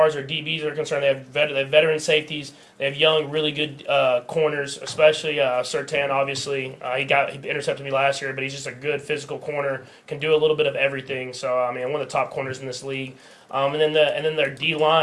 as their DBs are concerned, they have veteran safeties. They have young, really good corners, especially Surtain. Obviously, he intercepted me last year, but he's just a good physical corner. Can do a little bit of everything. So I mean, one of the top corners in this league. And then their D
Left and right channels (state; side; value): identical; both; correlation 1.00